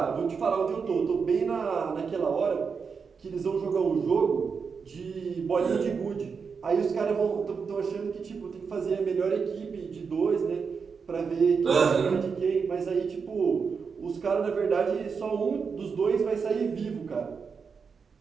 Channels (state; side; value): quieter; left; 5.6 dB